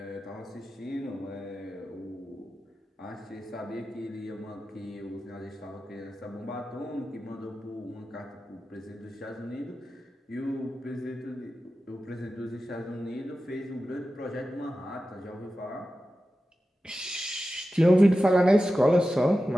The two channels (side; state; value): both; normal; correlation 0.93